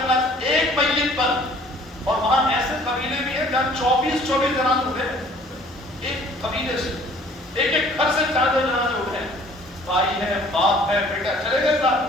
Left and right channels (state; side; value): normal; both; correlation 0.54